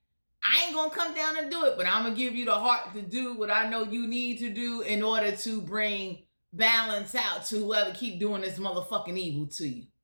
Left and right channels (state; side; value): inverted; both; correlation -1.00